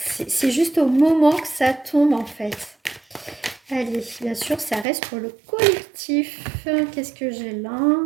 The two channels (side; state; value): left; drops out; at 4.9 s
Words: juste au moment que ça tombe en fait. Allez, bien sûr, ça reste pour le collectif. Qu'est-ce que j'ai là?